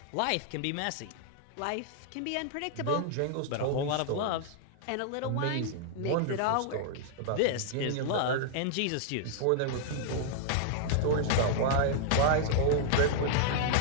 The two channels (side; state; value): both; different; correlation -0.01